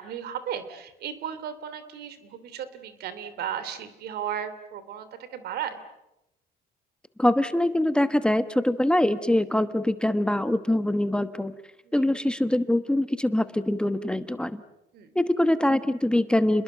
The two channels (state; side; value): normal; both; correlation 0.92